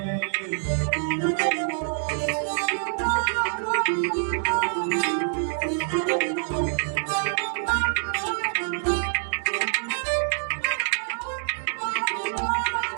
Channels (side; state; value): left; silent; digital silence